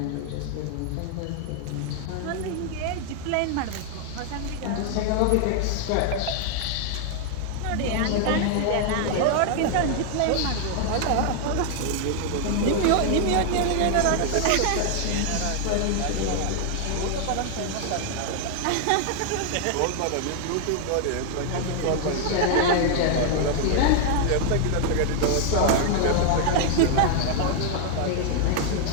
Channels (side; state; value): both; different; correlation 0.00